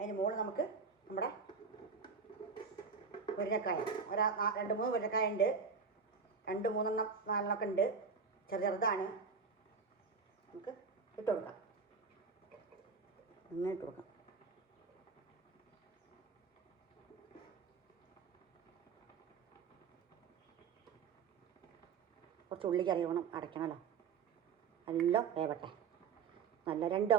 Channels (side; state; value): left; quieter; 5.7 dB